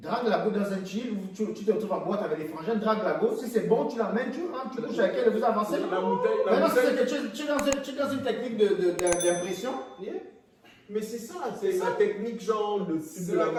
la go dans un chill, tu te retrouves en boîte avec les frangins, drague la go, si c'est bon, tu l'amènes, tu rentres, tu couches avec elle et vous avancez. Maintenant, si c'est que tu es dans une technique d'impression. Mais c'est ça, c'est la technique genre de la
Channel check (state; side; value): identical; both; correlation 1.00